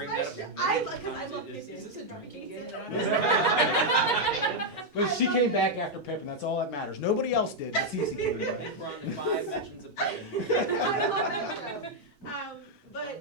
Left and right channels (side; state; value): both; normal; correlation -0.01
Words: my that up. show. Because I love Pippin. Is this a drinking game? But she came back after Pippin. That's all that matters. Nobody else did. That's easy. We're on to 5 mentions of Pippin. I love that show.